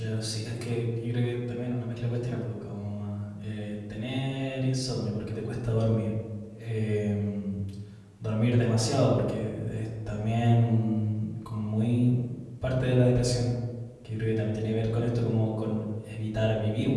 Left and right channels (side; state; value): both; identical; correlation 1.00